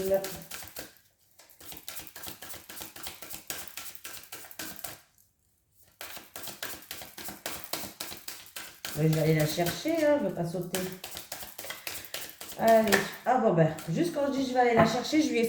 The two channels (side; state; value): both; identical; correlation 1.00